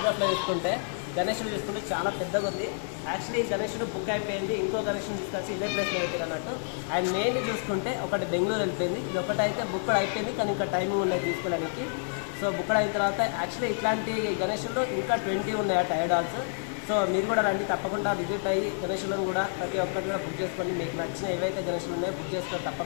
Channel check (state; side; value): silent; right; digital silence